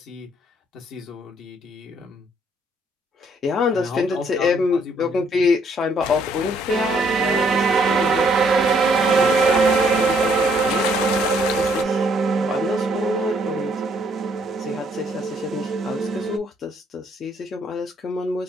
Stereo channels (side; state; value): both; normal; correlation 0.67